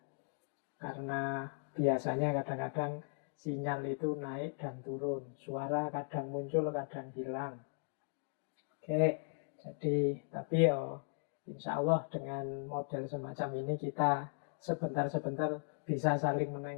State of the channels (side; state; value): right; silent; 53 dB below the other